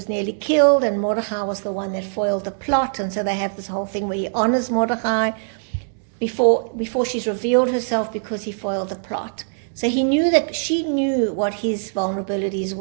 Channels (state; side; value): silent; left; 64 dB below the other